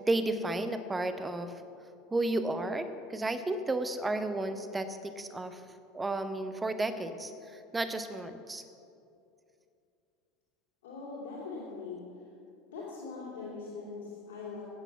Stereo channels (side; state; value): both; normal; correlation 0.78